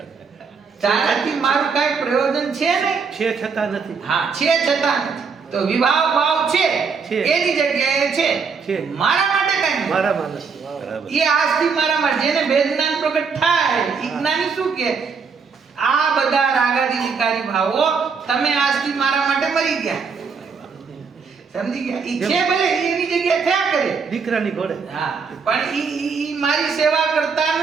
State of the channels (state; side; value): quieter; left; 5.5 dB